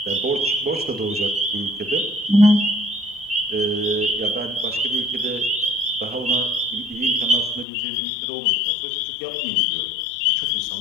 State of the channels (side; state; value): right; drops out; at 7.7 s